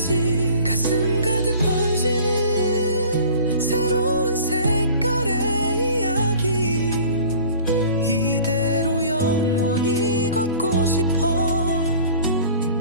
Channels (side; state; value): both; inverted; correlation -0.45